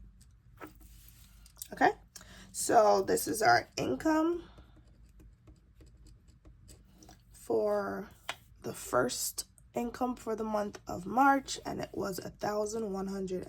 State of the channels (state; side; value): identical; both; correlation 1.00